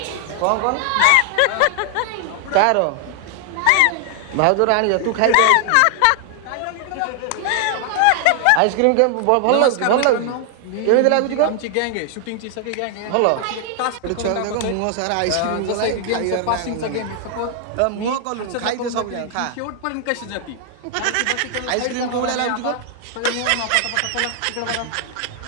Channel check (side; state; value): both; different; correlation 0.00